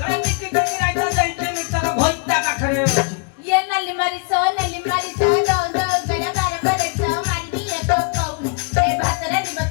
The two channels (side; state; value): right; quieter; 35.8 dB